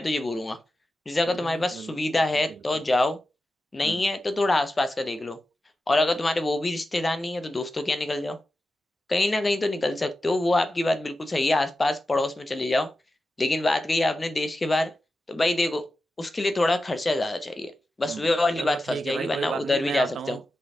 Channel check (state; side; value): normal; both; correlation 0.92